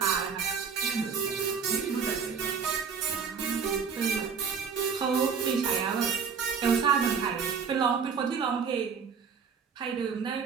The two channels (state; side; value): quieter; left; 6.2 dB